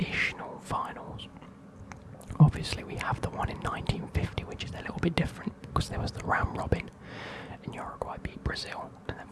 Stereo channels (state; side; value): identical; both; correlation 1.00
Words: finals. Obviously, we have the one in 1950, which is a little bit different because there was the round robin, and Uruguay beat Brazil and then